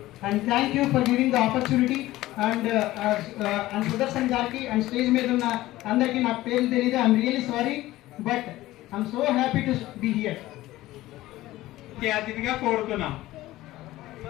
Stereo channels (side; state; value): right; quieter; 16.6 dB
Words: and thank you for giving the opportunity. And Sudarshan గారికి అండ్ స్టేజ్ మీద ఉన్న అందరికీ నాకు పేర్లు తెలియదు, I'm really sorry. But I'm so happy to be here. అతిథిగా కోరుతున్నాం.